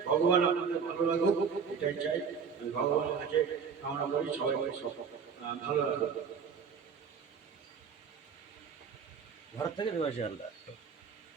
ভগবান আপনাদের ভালো লাগুক, এটাই চাই। ভগবানের কাছে কামনা করি সবাই ভালো লাগুক। ভারত থেকে দেবাশিস হালদার।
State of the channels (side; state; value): left; quieter; 6.3 dB